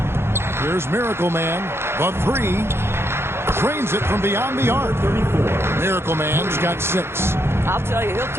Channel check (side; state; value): left; late; 0.12 ms